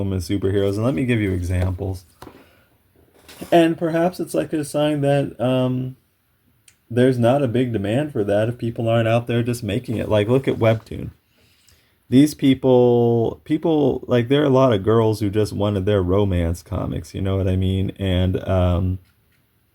superheroes. And let me give you examples. And perhaps it's like a sign that there's not a big demand for that if people aren't out there just making it. Like, look at Webtoon. These people, like, there are a lot of girls who just wanted their romance comics, you know what I mean? And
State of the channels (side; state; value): both; identical; correlation 1.00